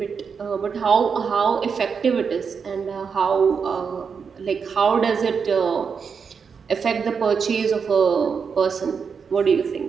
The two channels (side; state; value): left; quieter; 6.0 dB